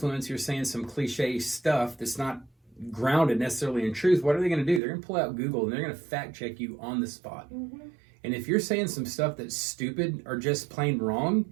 you're saying some cliche stuff that's not grounded necessarily in truth. What are they going to do? They're going to pull out Google, and they're going to fact check you on the spot. And if you're saying some stuff that's stupid or just plain wrong,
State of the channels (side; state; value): left; drops out; at 4.8 s